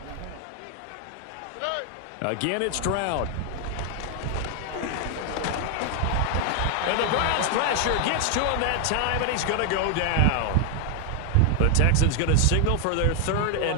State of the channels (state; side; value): different; both; correlation 0.00